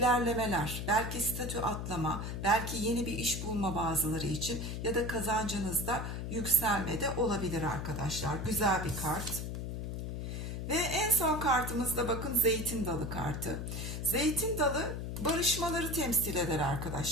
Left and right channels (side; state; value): left; noise; hum, 5 dB below the sound